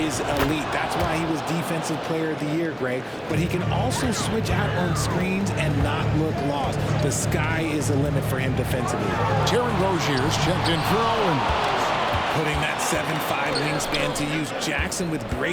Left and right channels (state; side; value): identical; both; correlation 1.00